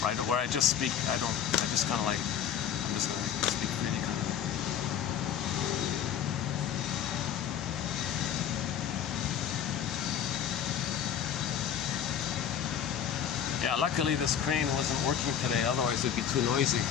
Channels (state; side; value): quieter; right; 8.8 dB